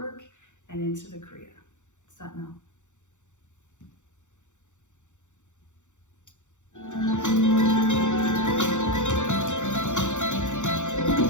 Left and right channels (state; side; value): late; right; 0.85 ms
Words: and into the kriya. Sat Nam.